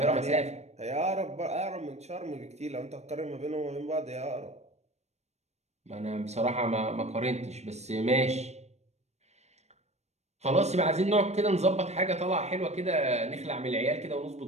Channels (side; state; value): left; late; 0.32 ms